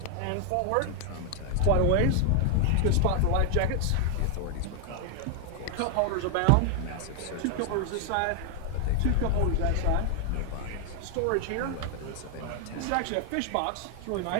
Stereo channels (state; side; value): different; both; correlation 0.00